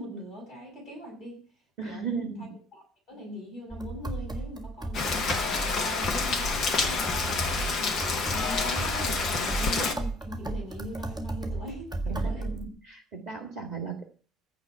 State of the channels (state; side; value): normal; both; correlation 0.56